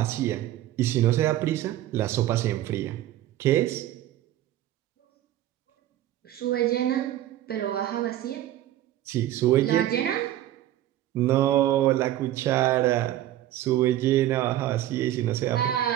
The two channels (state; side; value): quieter; left; 13.5 dB